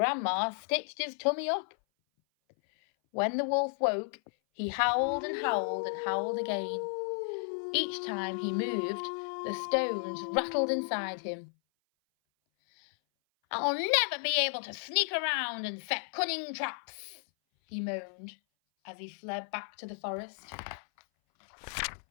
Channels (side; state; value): right; silent; 56 dB below the other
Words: stitched his tummy up. When the wolf woke, he howled and howled and howled again. Each time he moved, the stones rattled inside him. "I'll never be able to sneak around and set cunning traps," he moaned as he fled back to the forest.